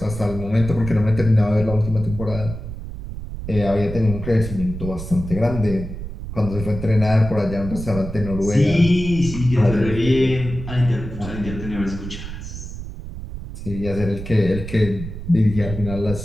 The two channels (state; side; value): noise; right; rumble, 9 dB below the sound